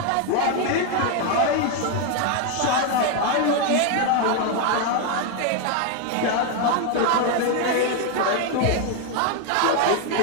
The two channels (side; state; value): both; different; correlation 0.01